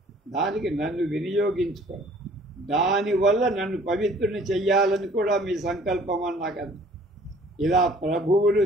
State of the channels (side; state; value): both; normal; correlation 0.54